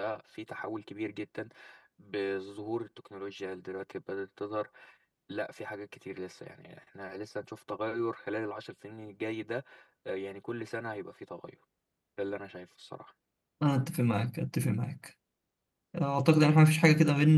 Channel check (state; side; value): identical; both; correlation 1.00